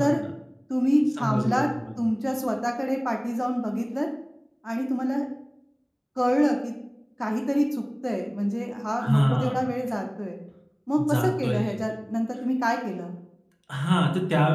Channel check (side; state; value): both; identical; correlation 1.00